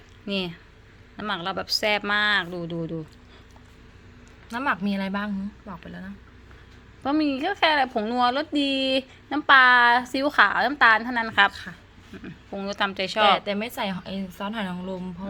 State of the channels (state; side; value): identical; both; correlation 1.00